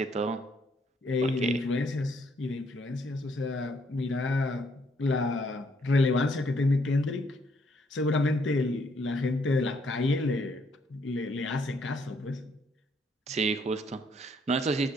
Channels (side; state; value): both; normal; correlation 0.69